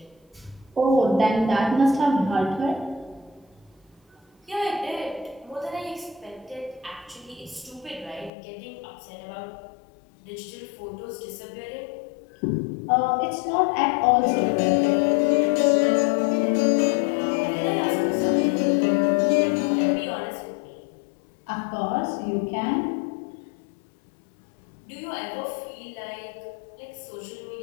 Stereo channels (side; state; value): right; drops out; at 8.3 s